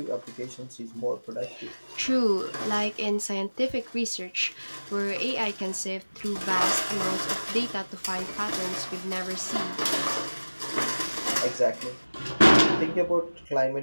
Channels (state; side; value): inverted; both; correlation -1.00